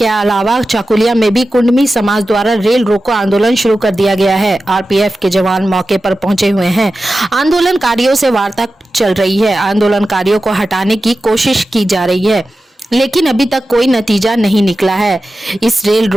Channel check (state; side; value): normal; both; correlation 0.94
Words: अलावा चाकुलिया में भी कुडमी समाज द्वारा रेल रोको आंदोलन शुरू कर दिया गया है। आरपीएफ के जवान मौके पर पहुंचे हुए हैं। आंदोलनकारियों से वार्ता चल रही है। आंदोलनकारियों को हटाने की कोशिश की जा रही है, लेकिन अभी तक कोई नतीजा नहीं निकला है। इस रेल